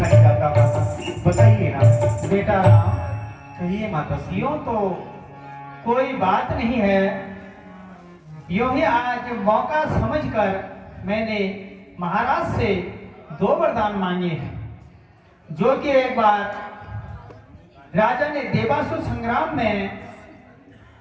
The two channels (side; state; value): both; identical; correlation 1.00